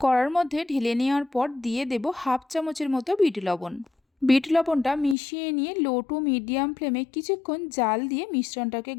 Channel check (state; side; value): drops out; right; at 5.2 s